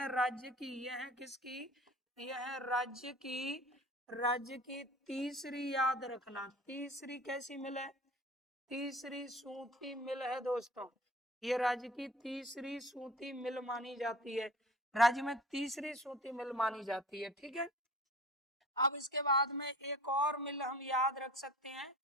राज्य की, यह है किसकी, यह है राज्य की, राज्य की तीसरी, याद रखना तीसरी कैसी मिल है, तीसरी सूती मिल है दोस्तों। ये राज्य की तीसरी सूती मिल मानी जाती है, राज्य में तीसरी सूती मिल मानी जाती है। ठीक है, अब इसके बाद में एक और मिल हम याद रख सकते हैं,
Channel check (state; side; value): normal; both; correlation 0.43